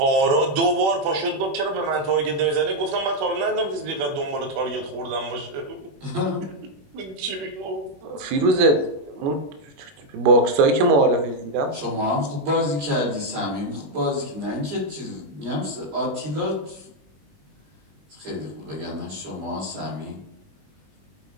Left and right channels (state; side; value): late; left; 21 ms